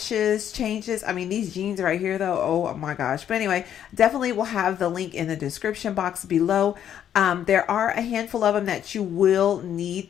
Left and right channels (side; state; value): right; quieter; 9.9 dB